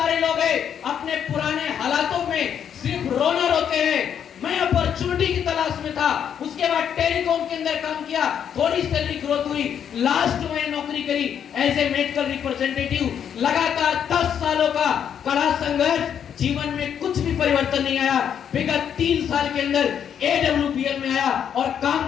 लोग हैं अपने पुराने हालातों में सिर्फ रोना रोते हैं। मैं अपॉर्चुनिटी की तलाश में था, उसके बाद टेलीकॉम के अंदर काम किया, थोड़ी सैलरी ग्रोथ हुई, लास्ट में नौकरी करी एज ए मेडिकल रिप्रेजेंटेटिव। लगातार 10 सालों का कड़ा संघर्ष, जीवन में कुछ भी परिवर्तन नहीं आया। विगत 3 साल के अंदर एडब्ल्यूपीएल में आया और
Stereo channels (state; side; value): quieter; right; 8.6 dB